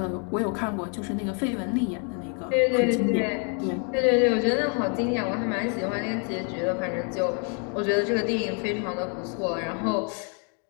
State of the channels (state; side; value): quieter; right; 39.5 dB